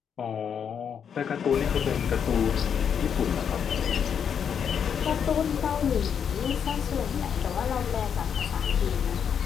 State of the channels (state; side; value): quieter; right; 7.7 dB